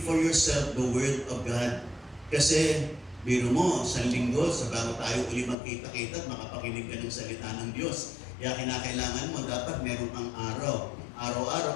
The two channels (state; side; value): drops out; right; at 5.6 s